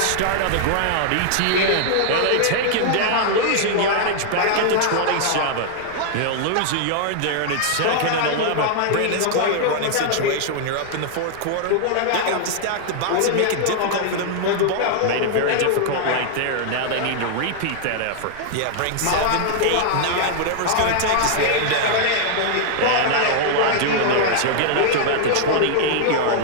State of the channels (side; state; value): both; different; correlation -0.01